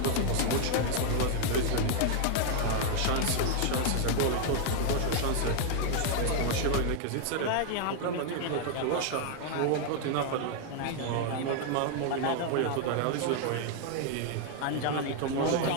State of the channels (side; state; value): both; different; correlation 0.00